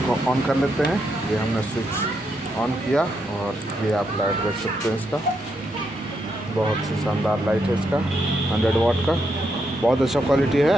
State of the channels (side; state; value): both; normal; correlation 0.80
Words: ऑन कर लेते हैं। ये हमने स्विच ऑन किया और ये आप लाइट देख सकते हैं। इसका बहुत ही शानदार लाइट है। इसका 100 वाट का बहुत अच्छा क्वालिटी